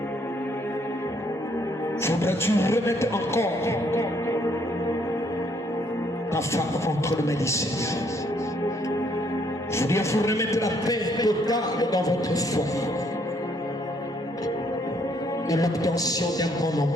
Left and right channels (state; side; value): normal; both; correlation 0.68